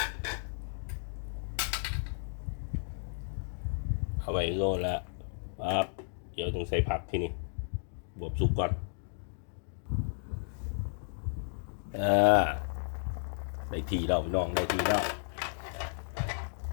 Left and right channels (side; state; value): right; silent; digital silence